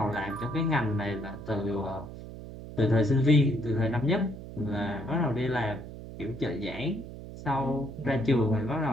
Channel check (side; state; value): right; noise; hum, 12 dB below the sound